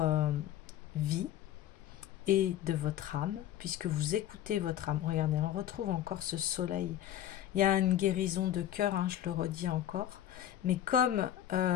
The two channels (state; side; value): quieter; right; 11.8 dB